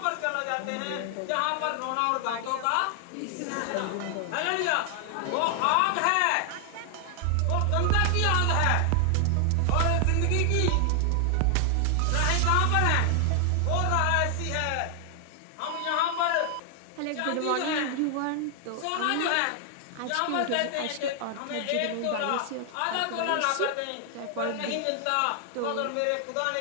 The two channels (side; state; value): both; different; correlation 0.00